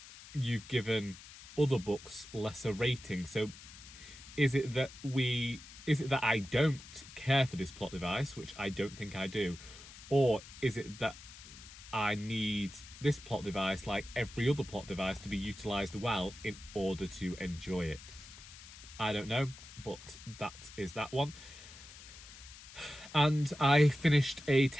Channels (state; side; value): noise; left; hiss, 17 dB below the sound